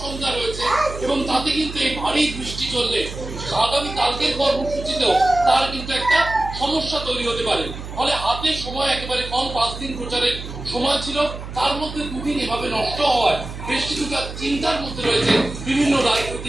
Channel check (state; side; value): noise; right; hum, 10 dB below the sound